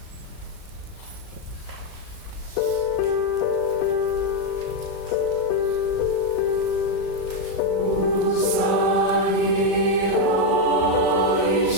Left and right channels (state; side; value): late; right; 36 ms